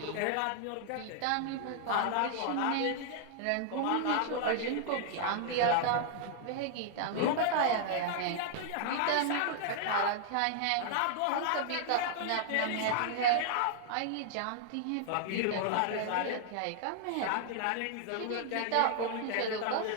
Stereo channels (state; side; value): different; both; correlation -0.01